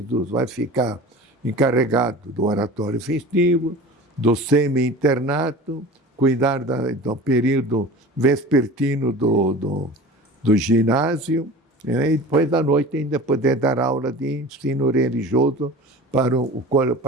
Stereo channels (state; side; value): normal; both; correlation 0.37